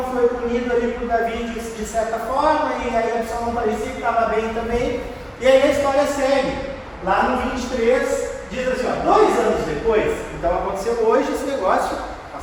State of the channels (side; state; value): both; identical; correlation 1.00